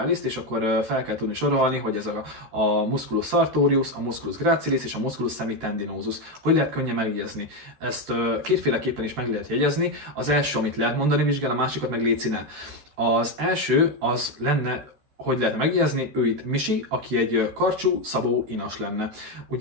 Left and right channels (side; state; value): left; late; 13 ms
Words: és akkor fel kell tudni sorolni, hogy ez a musculus sartorius, a musculus gracilis és a musculus semitendinosus. Hogy lehet könnyen megjegyezni? Ezt kétféleképpen is meg lehet jegyezni. Az első, amit lehet mondani vizsgán, a másikat meg léci ne. Az első az lenne, hogy lehetne megjegyezni, ő itt Misi, aki egy karcsú, szabó inas lenne.